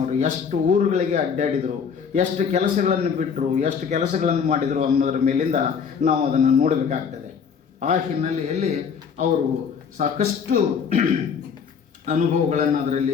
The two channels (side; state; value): right; quieter; 6.6 dB